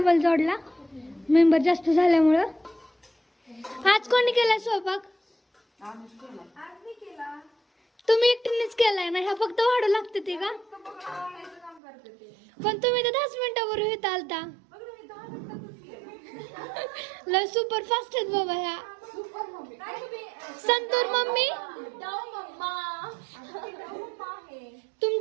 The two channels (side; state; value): left; drops out; at 11.8 s